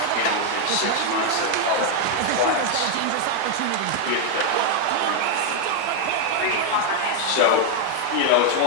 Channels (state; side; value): different; both; correlation 0.01